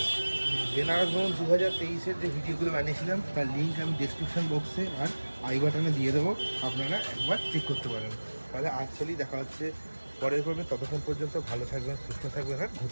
বেনারস ভ্রমণ 2023-এর যে ভিডিওগুলো বানিয়েছিলাম তার লিঙ্ক আমি ডেসক্রিপশন বক্সে আর আই বাটনে দিয়ে দেবো, আপনারা একবার চেক করতে পারেন। তাহলে আসলেই দেখা হচ্ছে পরের পর্বে। ততক্ষণ পর্যন্ত ভালো থাকবেন, সুস্থ থাকবেন আর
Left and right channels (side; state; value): both; inverted; correlation -1.00